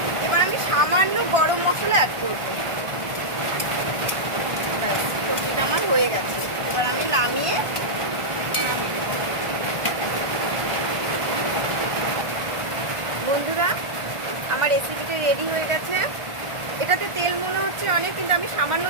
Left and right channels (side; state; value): left; late; 1.5 ms